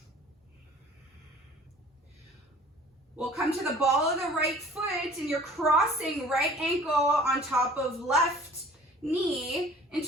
We'll come to the ball of the right foot and you're crossing right ankle on top of left knee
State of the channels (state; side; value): normal; both; correlation 0.49